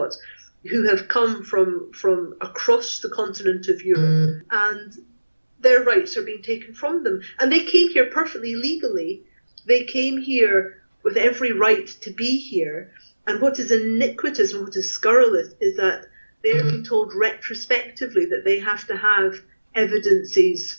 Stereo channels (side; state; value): both; inverted; correlation -1.00